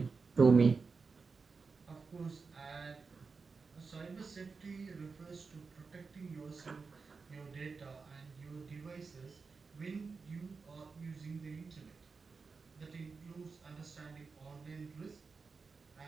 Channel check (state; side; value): quieter; left; 4.7 dB